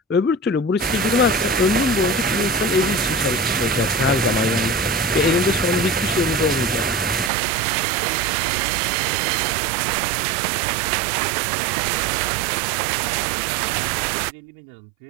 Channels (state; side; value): drops out; left; at 7.3 s